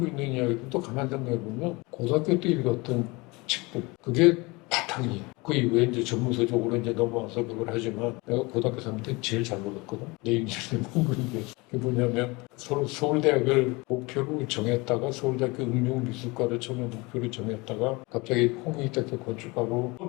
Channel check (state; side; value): quieter; right; 25.0 dB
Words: 있는 이야기도 또 가만 생각해 보면 고등학교 때 읽었던 책들 그게 바탕이 그 이후에 이제 전문서 쪽으로 이제 넘어와서 그걸 하지만 내가 고등학교 3년 때 제일 잘 먹었거든. 내 인생의 공부인 게 그게 뭐냐면 서울대학을 목표로 정했다가 서울대학교 응용미술과를 처음에 목표로 정했다가 갑자기 홍익대학교 건축하고